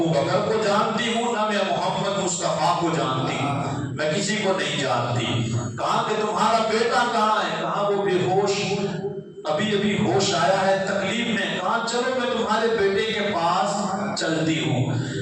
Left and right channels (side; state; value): both; identical; correlation 1.00